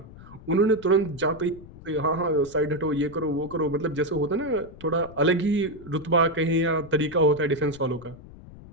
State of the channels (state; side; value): noise; left; rumble, 19 dB below the sound